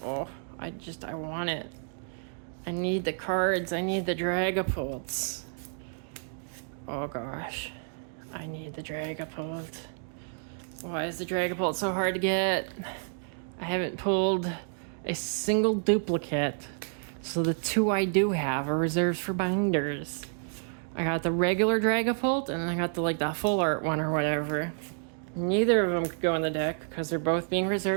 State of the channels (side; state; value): left; silent; digital silence